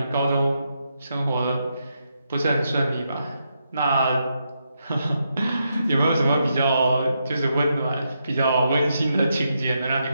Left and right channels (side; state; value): both; inverted; correlation -0.82